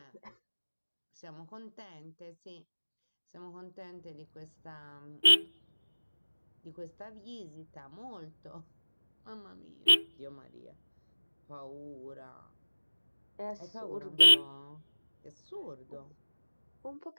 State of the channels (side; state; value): both; inverted; correlation -1.00